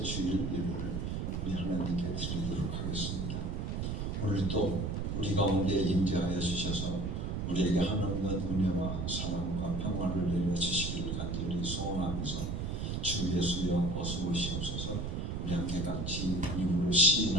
주일 예배를 우리 하나님께 드리도록 하겠습니다. 오늘도 우리 가운데 임재하여 주셔서 우리에게 하나님의 은혜와 사랑과 평안을 내려주시기를 간절히 소원하면서 주 예수여 어서 오시옵소서. 우리 함께 같이 입으로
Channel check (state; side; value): noise; right; rumble, 2 dB below the sound